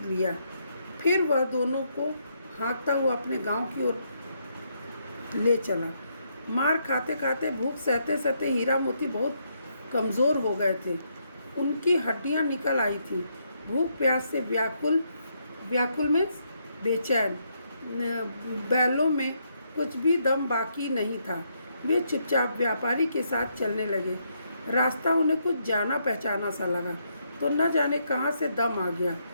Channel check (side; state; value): both; inverted; correlation -0.76